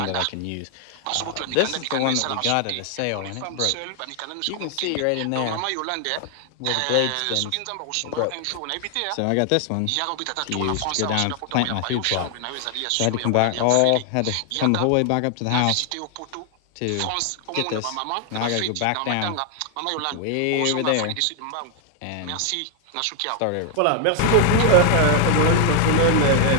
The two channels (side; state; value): both; different; correlation 0.00